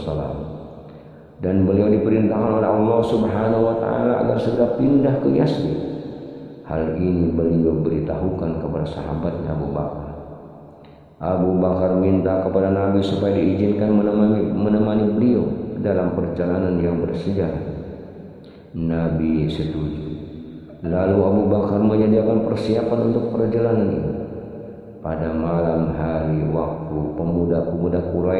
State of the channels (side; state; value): both; identical; correlation 1.00